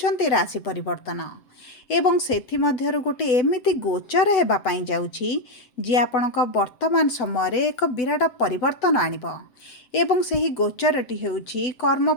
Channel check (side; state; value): right; late; 7.8 ms